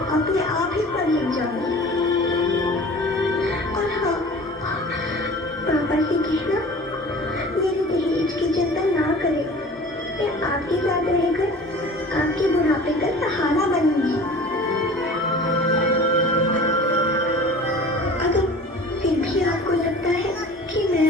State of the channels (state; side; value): normal; both; correlation 0.42